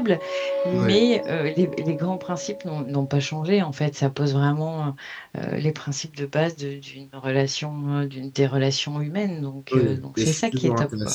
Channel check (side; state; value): both; identical; correlation 1.00